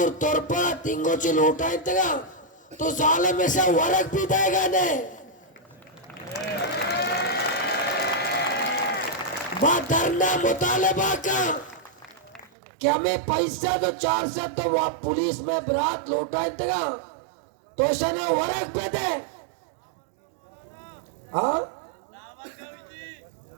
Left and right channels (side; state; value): left; drops out; at 12.5 s